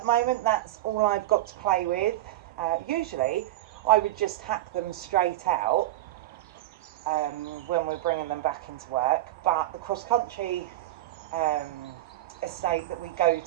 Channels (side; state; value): left; quieter; 15.4 dB